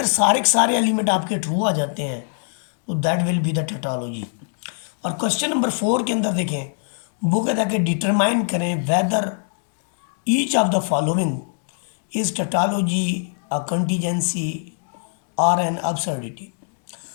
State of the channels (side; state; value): right; silent; 64 dB below the other